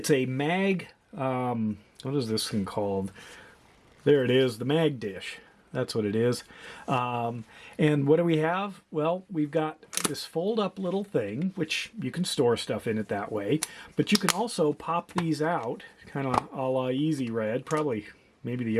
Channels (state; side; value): identical; both; correlation 1.00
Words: a mag, what is this thing called? There it is, the Mag Dish. That's what it is. And what do we have? Well, we've got this fold-up little thing, which you can store stuff in it that way. But you can also pop these out, kind of a la Easy Red, probably maybe the